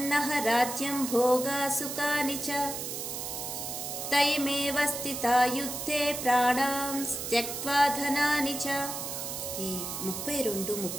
నః రాజ్యం భోగా సుఖాని చ తైమేవ స్థితా యుద్ధే ప్రాణాం త్యక్త్వా ధనాని చ. ఈ 32,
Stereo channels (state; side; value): noise; right; hiss, 5 dB below the sound